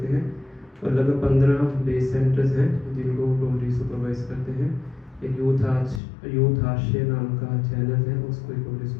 हैं और लगभग 15 बेस सेंटर्स हैं जिनको प्रभु जी सुपरवाइज करते हैं। एक यूथ आश्रय नाम का चैनल है, उसको प्रभु जी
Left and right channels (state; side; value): drops out; right; at 6.0 s